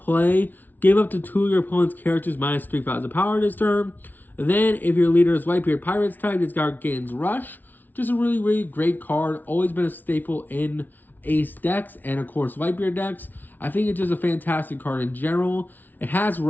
give up to 2 of your opponent's characters minus 3,000 power this turn. Then, if your leader is Whitebeard Pirates type, this guy gains Rush. Just a really, really great card. Always been a staple in Ace decks and, of course, Whitebeard decks. I think it's just a fantastic card in general. It has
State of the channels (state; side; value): late; right; 0.084 ms